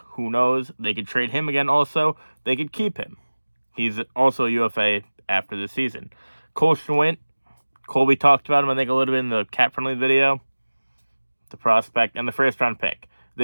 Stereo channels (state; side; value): inverted; both; correlation -1.00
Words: who knows? They could trade him again also. They could keep him. He's also a UFA after this season. Cole Schwint, Colby talked about him, I think, a little bit in the cap-friendly video. The prospect and the first-round pick.